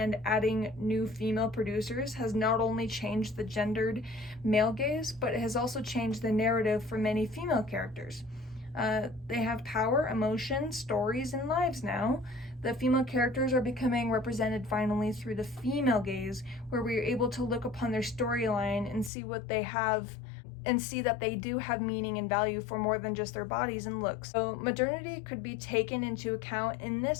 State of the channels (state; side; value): drops out; right; at 19.1 s